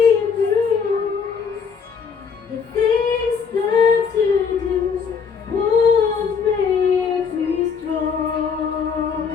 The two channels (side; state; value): right; quieter; 6.1 dB